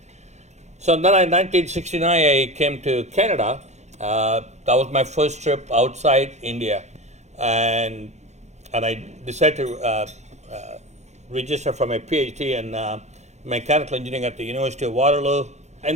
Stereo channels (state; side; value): late; left; 0.33 ms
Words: So then in 1969, I came to Canada. That was my first trip outside India. And I decided to register for my PhD in mechanical engineering at the University of Waterloo.